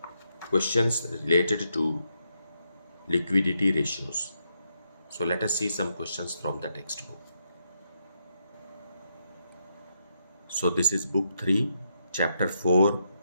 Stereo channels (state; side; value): inverted; both; correlation -0.80